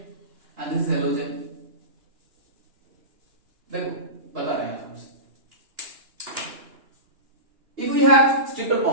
and this is halogen. देखो बता रहे हैं हमसे, if we have triple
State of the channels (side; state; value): left; late; 2.9 ms